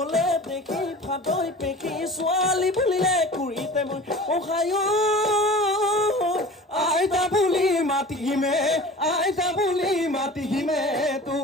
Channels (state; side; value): normal; both; correlation 0.39